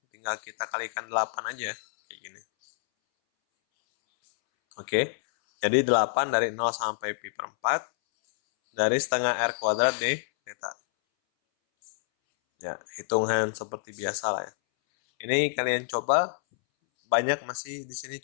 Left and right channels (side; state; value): right; silent; 60 dB below the other